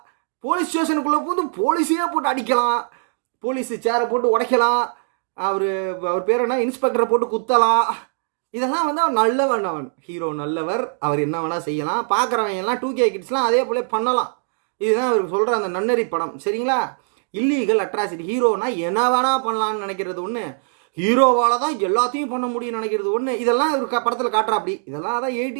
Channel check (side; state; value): left; silent; 58 dB below the other